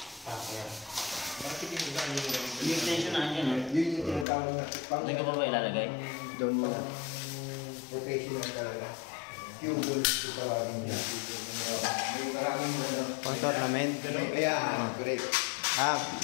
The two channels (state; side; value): drops out; right; at 4.2 s